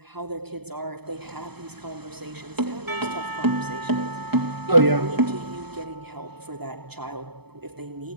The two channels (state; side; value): late; left; 0.98 ms